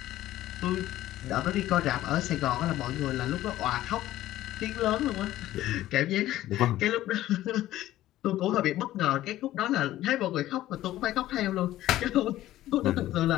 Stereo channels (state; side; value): quieter; right; 14.5 dB